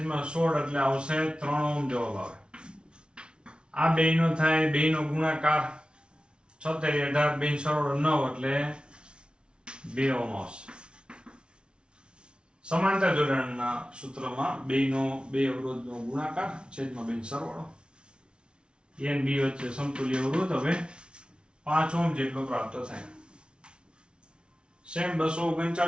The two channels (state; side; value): late; left; 0.056 ms